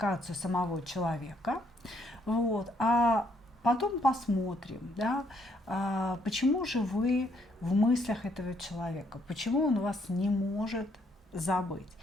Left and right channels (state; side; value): normal; both; correlation 0.71